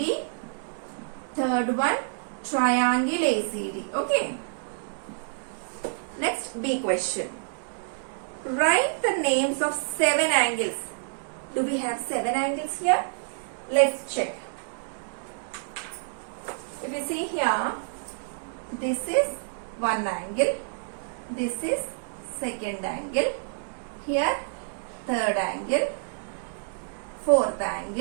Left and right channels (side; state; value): left; silent; digital silence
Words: Third one, triangle ACD. Okay. Next, B question. Write the names of 7 angles. Do we have 7 angles here? Let's check. If you see here, this is one angle. This is second angle. Here, third angle. Fourth